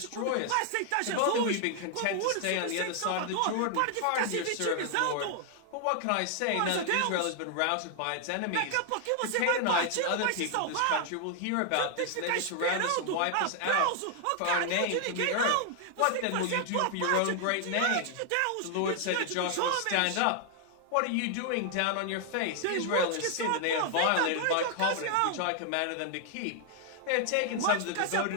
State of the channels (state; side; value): different; both; correlation 0.00